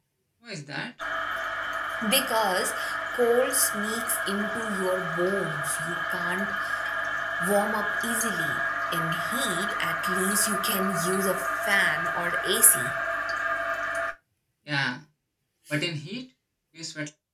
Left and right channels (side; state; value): both; identical; correlation 1.00